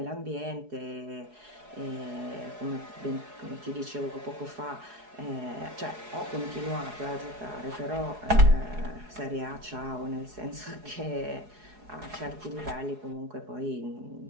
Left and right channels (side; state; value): left; late; 4.7 ms